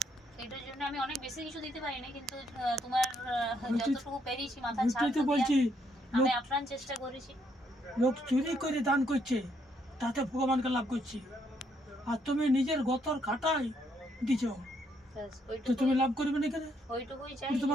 এটার জন্য আমি অনেক বেশি কিছু দিতে পারি না, কিন্তু তোমার যতটুকু পেরেছি মাথার ছাদটা বলছি, আমি আপ্রাণ চেষ্টা করেছি। লোক চুরি করে দান করছে, তাতে ভগবানকে লাভ করছি, আর তুমি নিজের গতর খাটাই দিছো, তো তুমি লাভ করবে না কেন? ওইটুকুই চাই,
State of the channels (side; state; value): both; normal; correlation 0.73